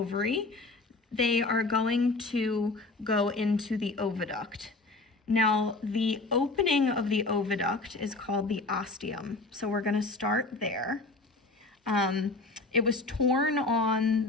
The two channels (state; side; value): quieter; right; 3.3 dB